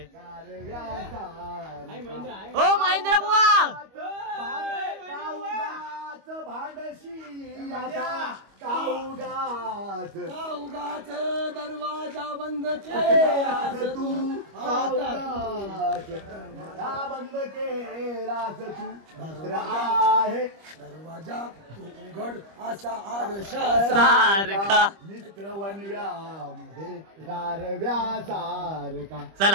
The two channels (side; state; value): left; late; 25 ms